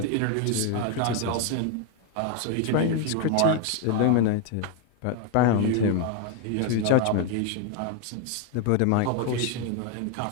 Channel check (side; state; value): both; different; correlation 0.01